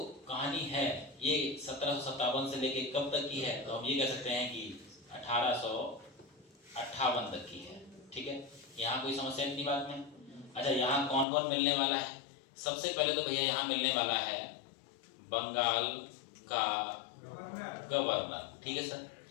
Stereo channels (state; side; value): drops out; right; at 11.2 s